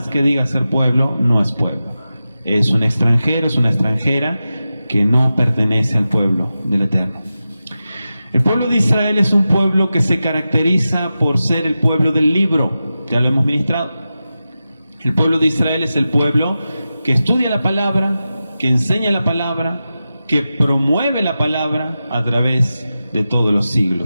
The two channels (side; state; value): both; inverted; correlation -0.93